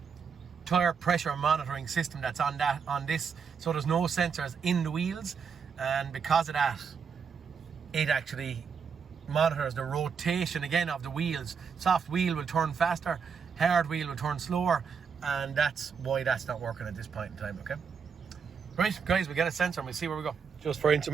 tire pressure monitoring system that's on this, so there's no sensors in the wheels, and because of that, it actually monitors the rotation again of the wheels. Soft wheel will turn faster, hard wheel will turn slower, and that's why that's not working at this point in time, okay? Right, guys, we get a sensor and we'll see where we go. Just for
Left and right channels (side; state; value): left; quieter; 6.3 dB